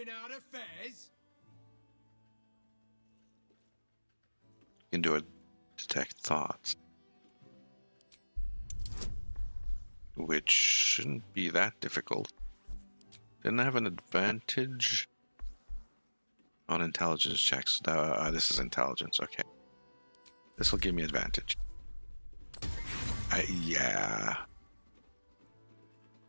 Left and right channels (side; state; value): both; inverted; correlation -1.00